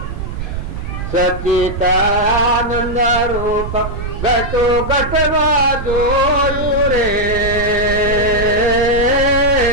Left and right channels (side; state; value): right; noise; rumble, 6 dB below the sound